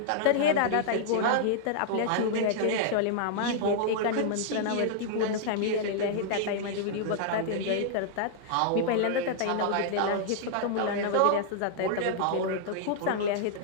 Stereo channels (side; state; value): both; different; correlation -0.01